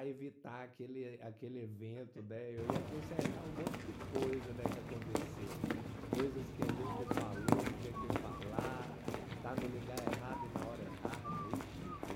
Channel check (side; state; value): both; identical; correlation 1.00